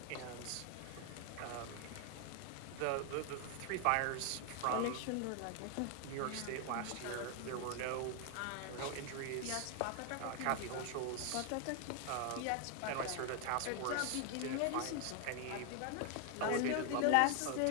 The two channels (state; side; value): different; both; correlation 0.00